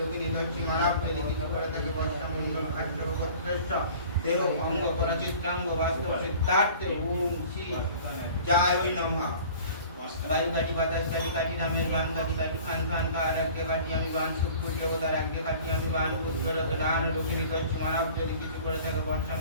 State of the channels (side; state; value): both; inverted; correlation -0.46